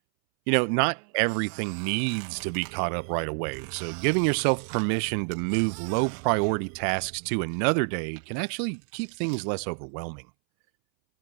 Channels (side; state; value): left; silent; 60 dB below the other